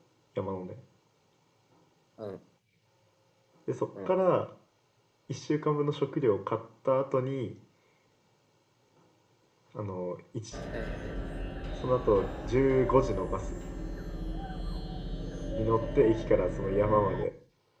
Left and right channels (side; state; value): both; identical; correlation 1.00